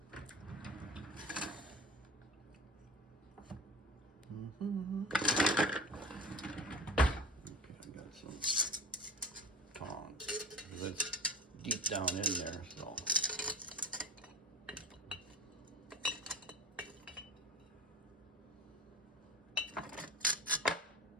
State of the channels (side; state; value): both; normal; correlation 0.34